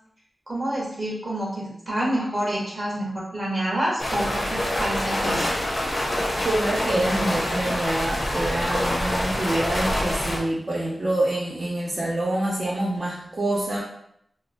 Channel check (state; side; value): normal; both; correlation 0.93